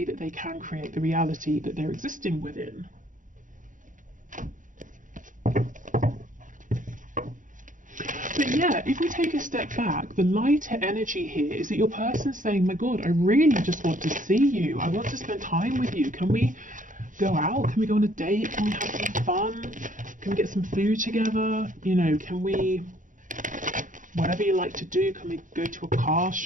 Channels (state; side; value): late; left; 0.38 ms